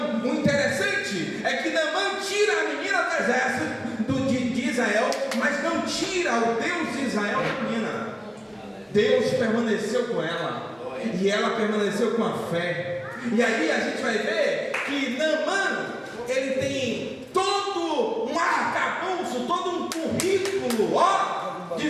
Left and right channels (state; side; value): identical; both; correlation 1.00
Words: o interessante é que Naamã tira a menina do exército de Israel, mas não tira o Deus de Israel da menina. Deus permaneceu com ela, e ela permaneceu com a fé. E aí a gente vai ver que Naamã, ele tem todo um arcabouço, todo um currículo, ó,